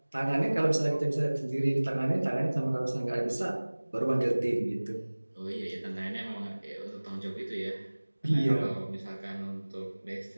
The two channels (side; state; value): both; inverted; correlation -1.00